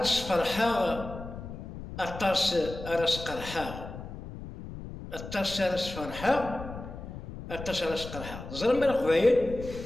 فرحا أطاس أراس قرحا أطاس أراس فرحا أطاس أراس قرحا زرما القبايل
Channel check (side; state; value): left; noise; rumble, 11 dB below the sound